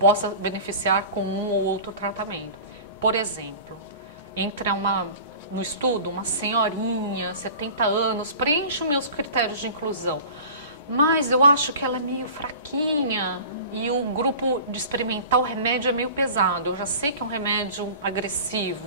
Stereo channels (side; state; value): both; inverted; correlation -0.39